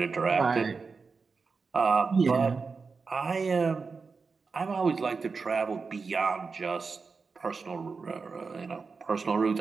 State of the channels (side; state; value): left; quieter; 4.7 dB